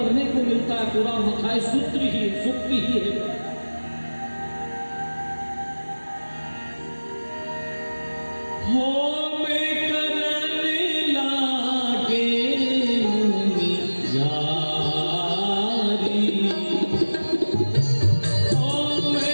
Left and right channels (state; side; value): inverted; both; correlation -1.00